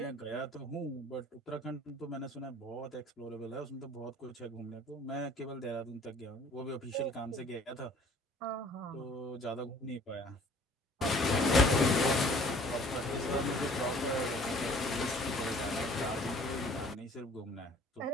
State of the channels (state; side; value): normal; both; correlation 0.53